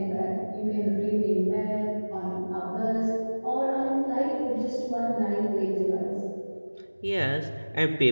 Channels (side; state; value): both; inverted; correlation -1.00